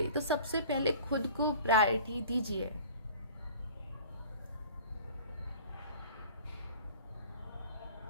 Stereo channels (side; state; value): both; inverted; correlation -0.44